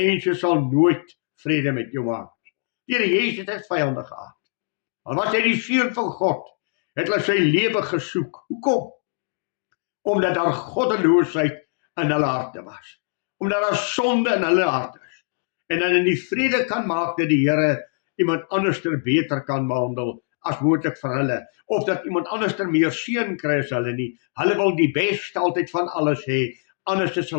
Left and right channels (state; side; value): silent; right; 61 dB below the other